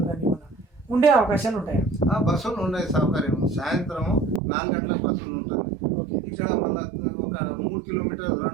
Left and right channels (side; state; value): left; drops out; at 4.4 s